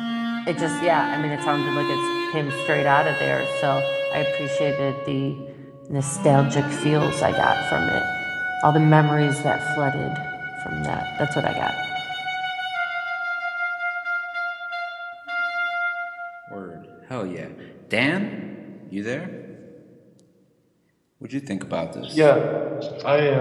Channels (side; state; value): both; identical; correlation 1.00